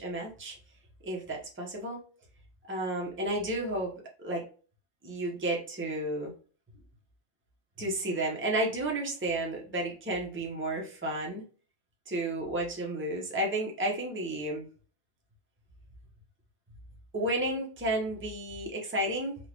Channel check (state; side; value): normal; both; correlation 0.03